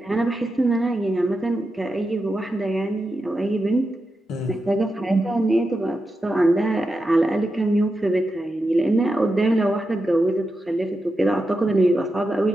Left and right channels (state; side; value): normal; both; correlation 0.89